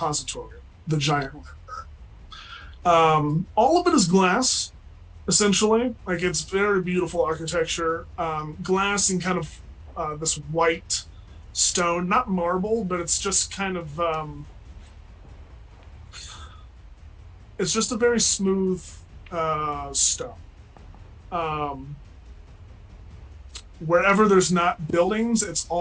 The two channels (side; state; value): both; identical; correlation 1.00